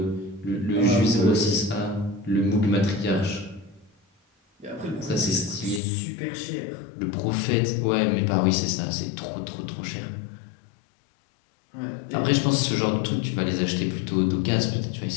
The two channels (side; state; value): right; drops out; at 5.8 s